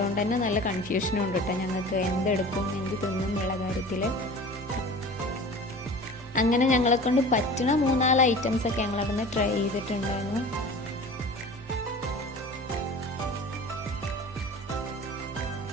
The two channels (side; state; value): both; normal; correlation 0.39